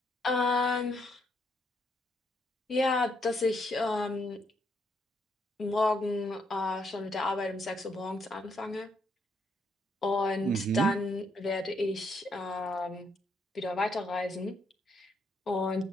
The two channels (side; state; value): both; normal; correlation 0.74